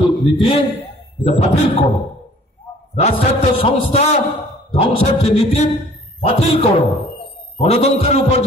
নীতি, এটা বাতিল করো। রাষ্ট্রায়ত্ত সংস্থা ধ্বংসের যে নীতি বাতিল করো। গণতন্ত্রের উপর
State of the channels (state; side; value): normal; both; correlation 0.53